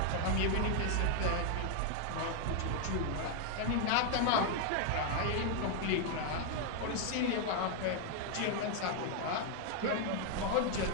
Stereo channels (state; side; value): different; both; correlation 0.00